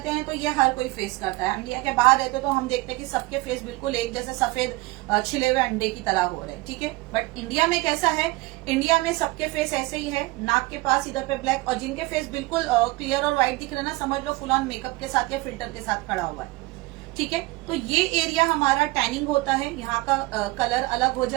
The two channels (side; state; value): left; quieter; 21.9 dB